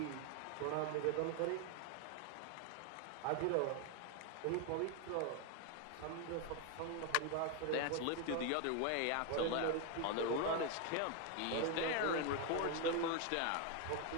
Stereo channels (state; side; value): different; both; correlation 0.01